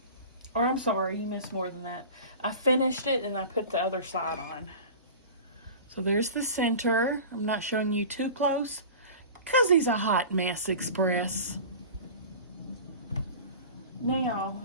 Or I'm sorry, you missed more than that. I finished it and I put the other side on. So there's the center. I'm not showing you too close because he's a hot mess express. Now,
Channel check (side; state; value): both; inverted; correlation -0.36